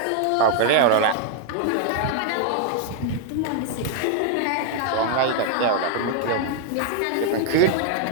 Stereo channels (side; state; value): both; different; correlation 0.00